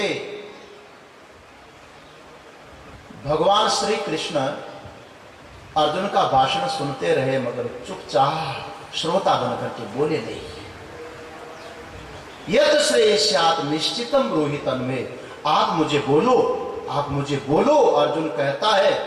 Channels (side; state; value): both; identical; correlation 1.00